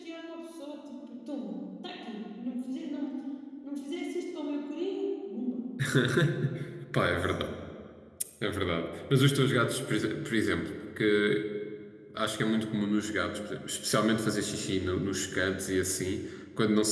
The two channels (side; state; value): both; identical; correlation 1.00